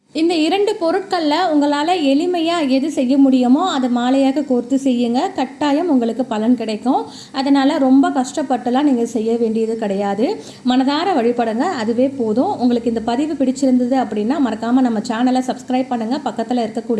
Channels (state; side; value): identical; both; correlation 1.00